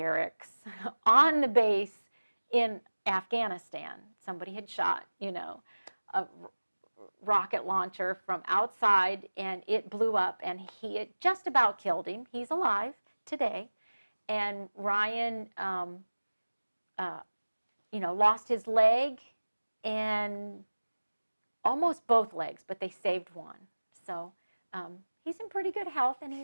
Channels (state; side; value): inverted; both; correlation -1.00